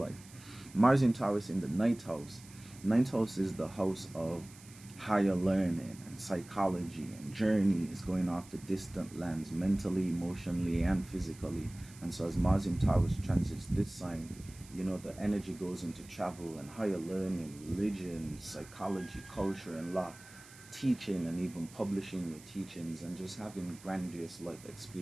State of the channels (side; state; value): right; noise; hiss, 21 dB below the sound